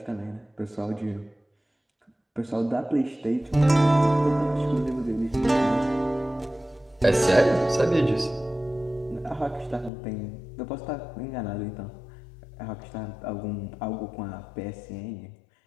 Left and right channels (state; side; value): drops out; right; at 9.9 s